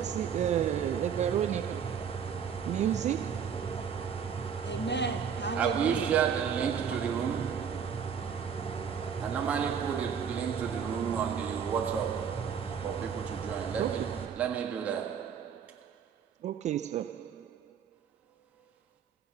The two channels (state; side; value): quieter; left; 7.4 dB